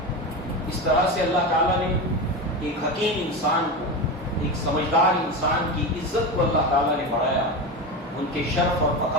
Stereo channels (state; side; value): normal; both; correlation 0.21